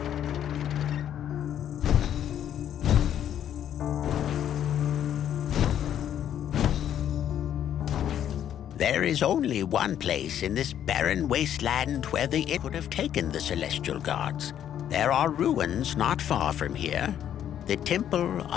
There is only one place in this barren wasteland where it would have taken the Celestial Guards. There are ruins not far from here, the Temple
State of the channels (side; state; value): right; quieter; 10.2 dB